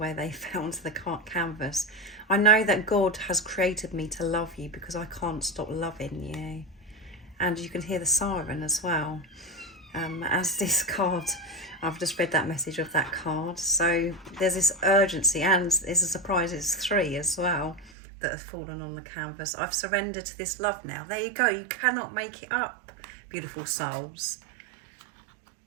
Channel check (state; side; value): drops out; left; at 17.9 s